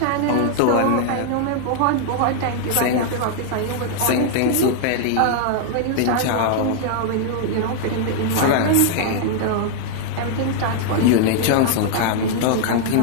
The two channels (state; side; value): different; both; correlation 0.00